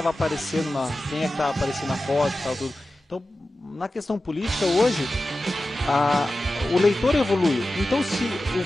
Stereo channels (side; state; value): both; normal; correlation 0.94